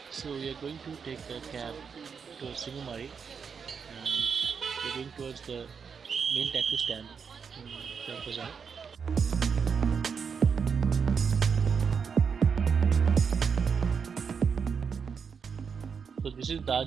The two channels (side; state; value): left; quieter; 6.2 dB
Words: So we are going to take a cab to Singamari and we're going towards the main taxi stand in Chowk Bazaar. So this is